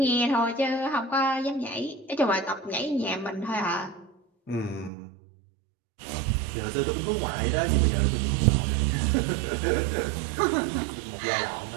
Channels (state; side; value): drops out; left; at 4.9 s